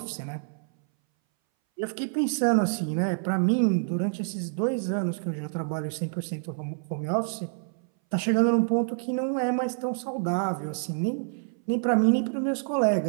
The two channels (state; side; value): silent; left; 60 dB below the other